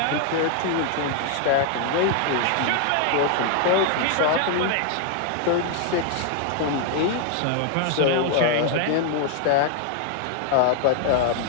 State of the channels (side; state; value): both; different; correlation 0.00